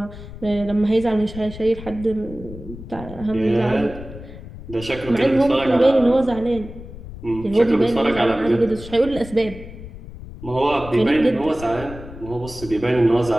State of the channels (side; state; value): left; noise; rumble, 14 dB below the sound